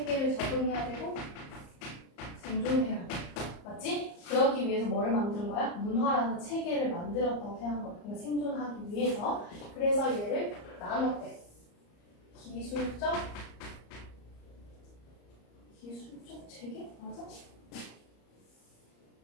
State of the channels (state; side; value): late; right; 34 ms